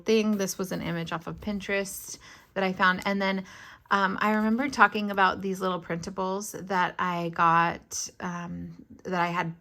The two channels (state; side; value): identical; both; correlation 1.00